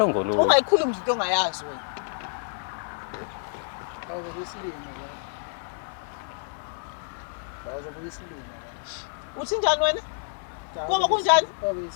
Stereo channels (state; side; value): silent; right; 58 dB below the other